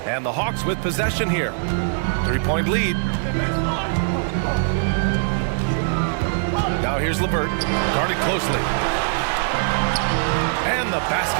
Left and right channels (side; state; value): left; silent; digital silence